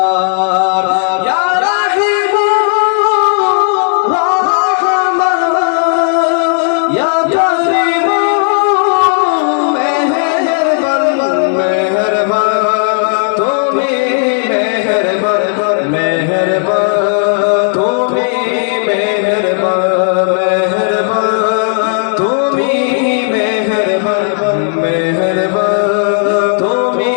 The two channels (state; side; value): silent; right; 63 dB below the other